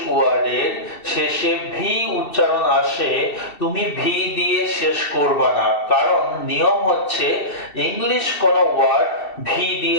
ওয়ার্ডের শেষে ভি উচ্চারণ আসে, তুমি ভি দিয়ে শেষ করবে না, কারণ নিয়ম হচ্ছে ইংলিশ কোনো ওয়ার্ড ভি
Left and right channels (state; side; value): late; right; 2.7 ms